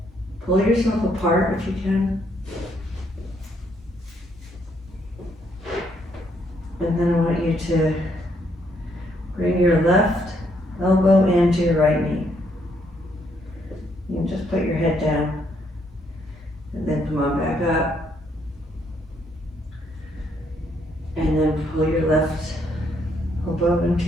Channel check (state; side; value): normal; both; correlation 0.72